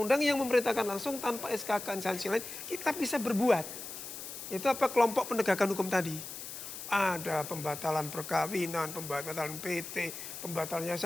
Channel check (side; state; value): left; noise; hiss, 9 dB below the sound